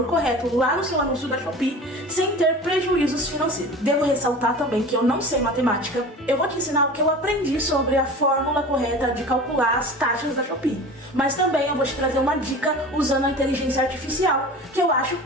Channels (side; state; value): both; normal; correlation 0.36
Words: correto lá no seu anúncio da Shopee sem ter prejuízos financeiros. Devo ressaltar também que eu não sei matemática. Eu vou te ensinar o que eu aprendi sobre a fórmula correta de calcular as taxas da Shopee. Mas também eu vou te trazer uma dica usando a inteligência artificial, que eu acho